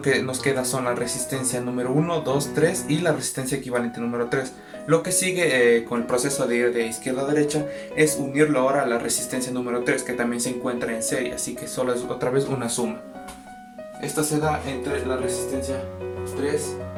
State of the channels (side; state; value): both; identical; correlation 1.00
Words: que nos queda son la resistencia número 1, 2, 3 y la resistencia equivalente número 3. Lo que sigue con el proceso de ir de izquierda a derecha es unirlo ahora a la resistencia número 3, que también se encuentra en serie, así que solo es otra vez una suma. Esta se da entre la resistencia 3